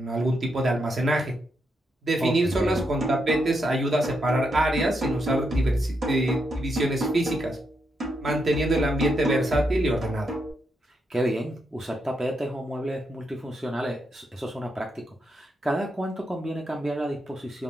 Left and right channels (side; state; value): both; normal; correlation 0.82